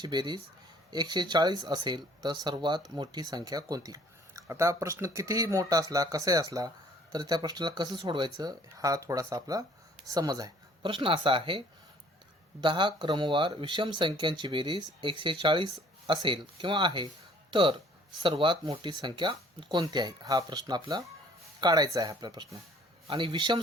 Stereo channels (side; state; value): both; normal; correlation 0.56